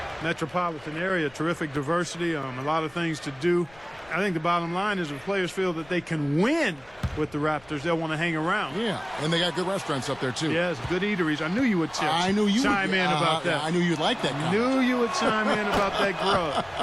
metropolitan area, terrific diversity, a lot of things to do. I think the bottom line is if players feel that they can win with the Raptors, they'll want to hang around. Yeah, and they got good restaurants up there, too. Yes, good eateries. I knew you would chime in about that. I knew you'd like that comment. Knew you would chime in about that grub.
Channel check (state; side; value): noise; left; rumble, 27 dB below the sound